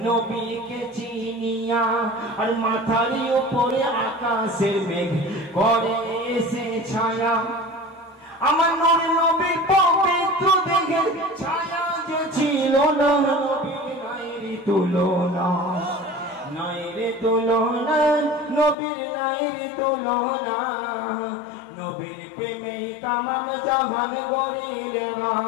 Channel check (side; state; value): right; drops out; at 18.8 s